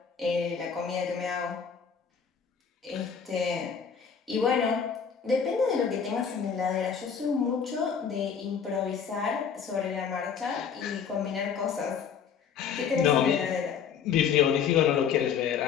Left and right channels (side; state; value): right; quieter; 6.9 dB